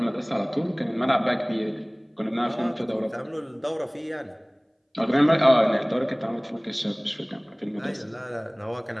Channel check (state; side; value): identical; both; correlation 1.00